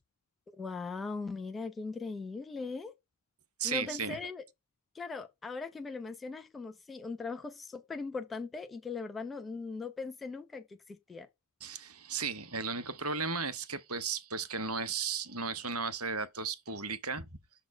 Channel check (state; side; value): normal; both; correlation 0.24